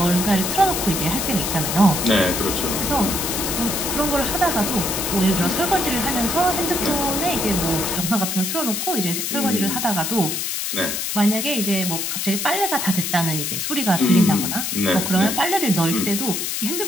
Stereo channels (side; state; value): left; noise; hiss, 2 dB below the sound